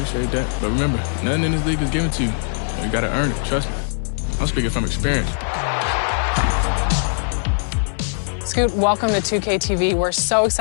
But remember, nothing in this league is given to you. You got to earn it. Trust me. I'm speaking from experience. Scoot, welcome to 2K TV. We're so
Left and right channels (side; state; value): right; silent; 61 dB below the other